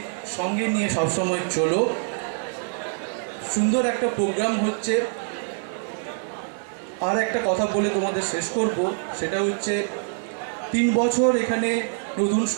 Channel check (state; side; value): silent; left; digital silence